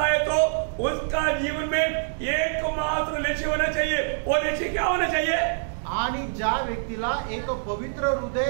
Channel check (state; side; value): silent; left; digital silence